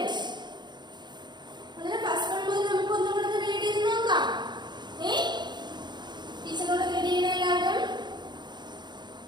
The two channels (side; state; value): left; late; 0.21 ms